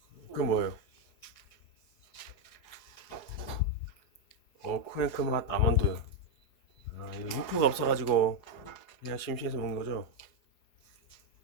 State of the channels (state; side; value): late; right; 4.8 ms